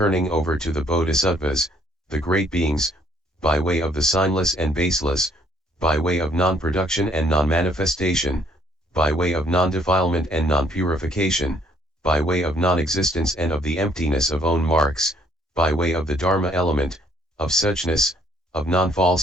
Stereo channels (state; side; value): normal; both; correlation 0.64